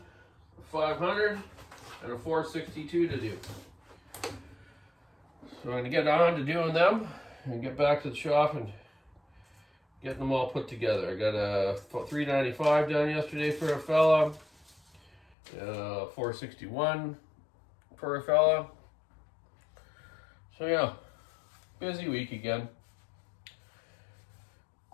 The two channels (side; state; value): right; drops out; at 15.4 s